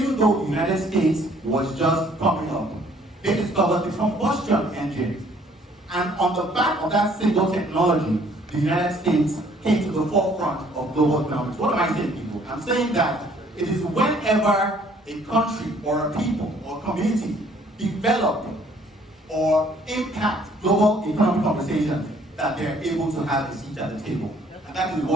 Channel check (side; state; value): both; normal; correlation 0.60